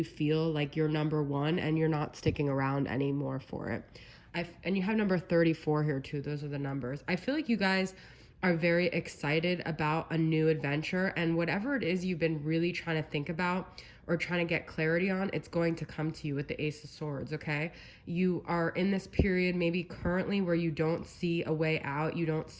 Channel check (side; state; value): both; identical; correlation 1.00